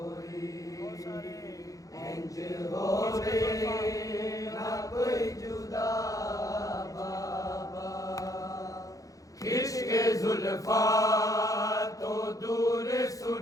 इंज होवे ना कोई जुदा बाबा खिश्के जुल्फा तो दूर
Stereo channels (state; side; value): late; right; 0.17 ms